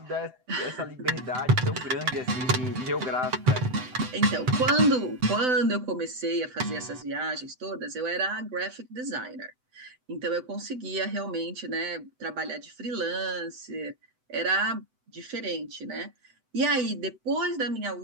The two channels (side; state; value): left; late; 7.9 ms